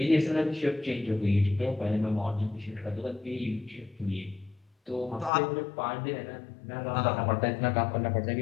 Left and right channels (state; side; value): drops out; right; at 5.3 s